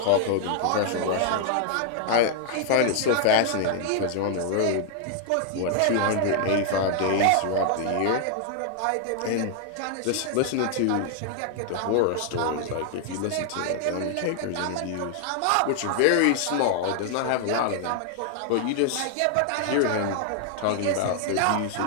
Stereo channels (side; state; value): both; different; correlation 0.00